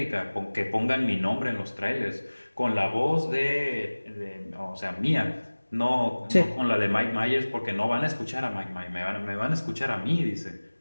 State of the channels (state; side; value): inverted; both; correlation -1.00